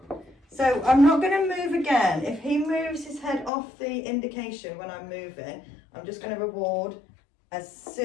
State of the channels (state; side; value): drops out; right; at 3.5 s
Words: So I'm not going to move again. If he moves his head off the indication when I'm moving, I'm just going to reward as